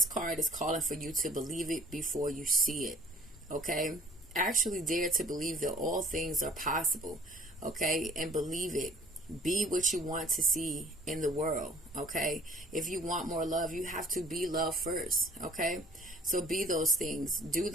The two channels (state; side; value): normal; both; correlation 0.53